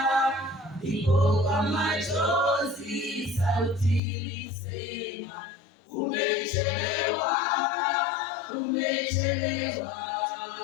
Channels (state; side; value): drops out; right; at 4.0 s